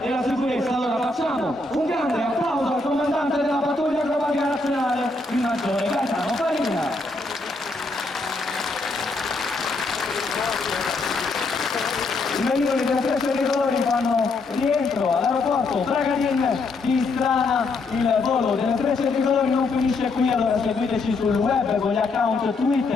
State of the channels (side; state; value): right; quieter; 3.4 dB